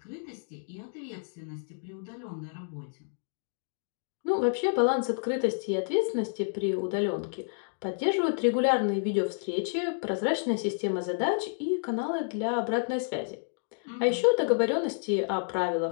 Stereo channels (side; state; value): right; silent; digital silence